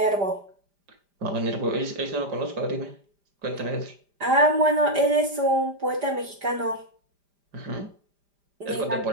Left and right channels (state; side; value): late; left; 5.0 ms